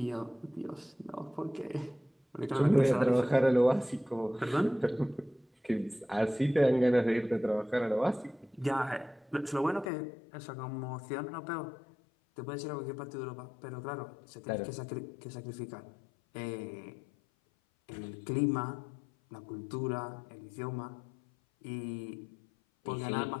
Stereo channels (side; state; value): right; drops out; at 9.9 s